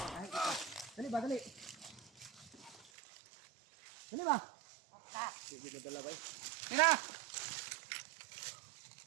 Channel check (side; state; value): left; drops out; at 2.9 s